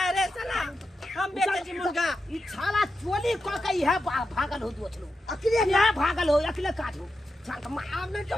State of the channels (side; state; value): both; normal; correlation 0.89